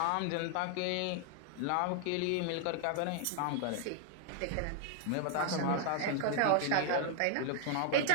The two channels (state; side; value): different; both; correlation 0.00